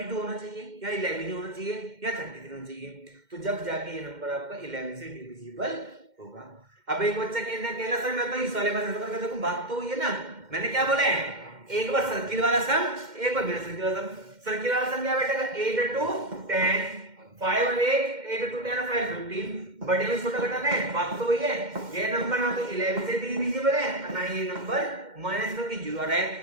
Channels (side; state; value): left; late; 2.1 ms